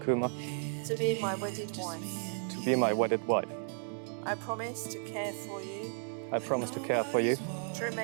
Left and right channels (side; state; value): left; silent; 55 dB below the other